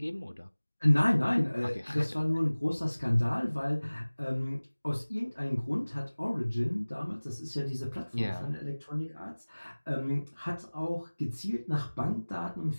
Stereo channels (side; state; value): both; inverted; correlation -1.00